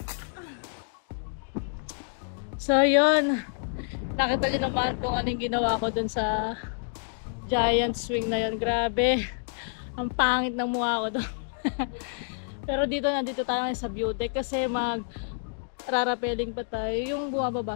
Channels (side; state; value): right; silent; digital silence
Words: So yun, nakita niyo naman kung anong ginawa ko dun sa giant swing na yun. Grabe, ang pangit ng mukha ko doon. Pero nandito tayo ngayon sa view deck kasi rarapeling pa tayo yung bumababa